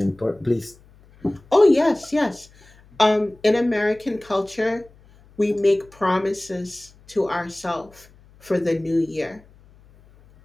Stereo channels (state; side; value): noise; left; hum, 27 dB below the sound